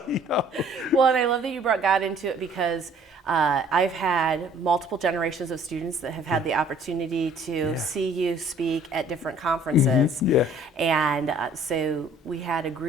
you know. Well, and I love that you brought God into it because I've had multiple generations of students that have had the opportunity to see you speak at different conferences. Yeah. And so we had a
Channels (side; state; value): both; normal; correlation 0.55